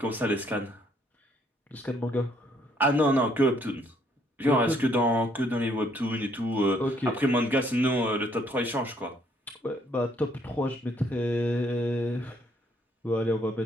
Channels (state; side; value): normal; both; correlation 0.67